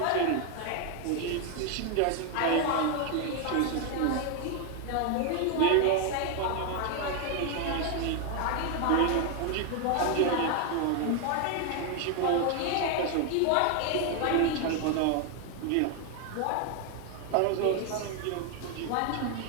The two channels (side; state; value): both; different; correlation 0.01